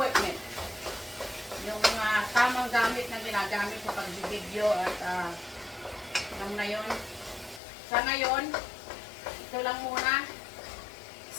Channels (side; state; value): right; drops out; at 7.6 s